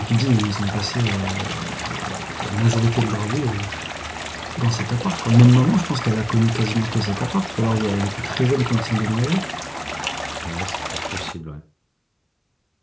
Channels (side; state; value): both; identical; correlation 1.00